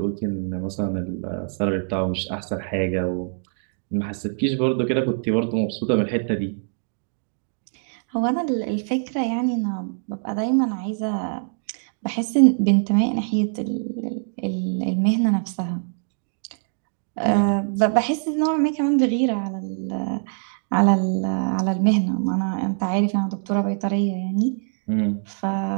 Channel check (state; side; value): silent; left; 60 dB below the other